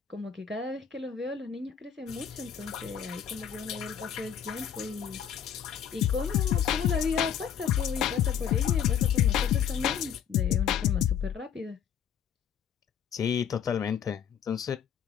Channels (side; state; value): right; quieter; 8.5 dB